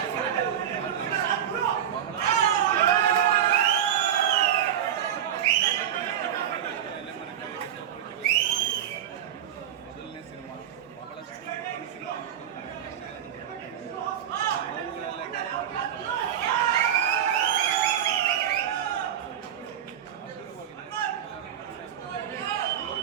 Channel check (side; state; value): left; quieter; 9.9 dB